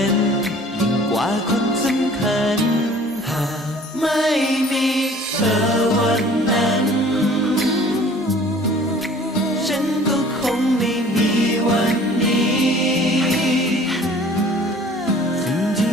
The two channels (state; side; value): normal; both; correlation 0.50